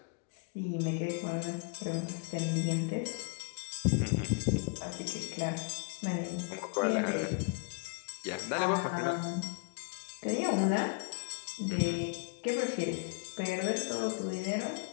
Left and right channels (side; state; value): right; quieter; 33.6 dB